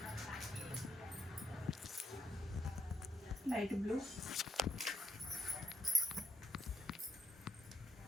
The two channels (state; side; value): normal; both; correlation 0.70